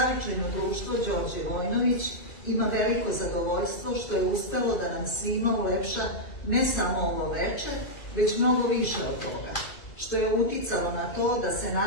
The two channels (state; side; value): late; right; 2.4 ms